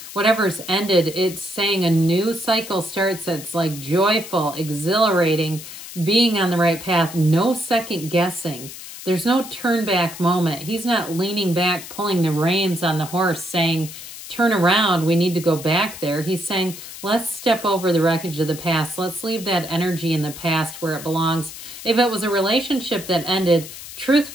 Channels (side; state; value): left; noise; hiss, 13 dB below the sound